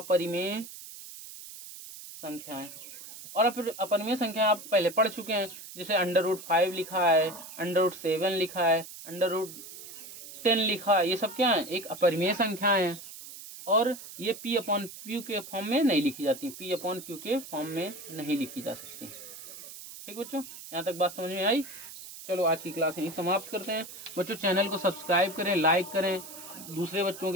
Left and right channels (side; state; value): right; noise; hiss, 14 dB below the sound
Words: संख्याएं। और अपरिमेय संख्या आप पहले पढ़ चुके हैं, जैसे √5 लिखा है, √7 लिखा है, √10 लिखा है, ये सब क्या है, एक अपरिमेय संख्याएं हैं। और ये P/Q के फॉर्म में नहीं लिखी जाती, P/Q के फॉर्म में नहीं लिखी जा सकती। ठीक बच्चों, यहाँ तक बात समझ में आई। चलो आज की क्लास यहीं समाप्त करते हैं। बच्चों चैनल को सब्सक्राइब करें, लाइक करें, दूसरे बच्चों